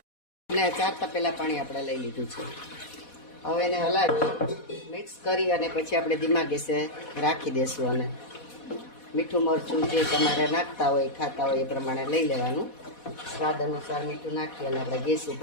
અને 4 તપેલા પાણી આપણે લઈ લીધું છે. હવે એને હલાવી મિક્સ કરી અને પછી આપણે ધીમા ગેસે રાખી દઈશું. અને મીઠું મરચું જે તમારે નાખતા હોય ખાતા હોય એ પ્રમાણે લઈ લેવાનું. સ્વાદ અનુસાર મીઠું નાખી અને આપણે ગેસ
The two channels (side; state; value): right; late; 4.1 ms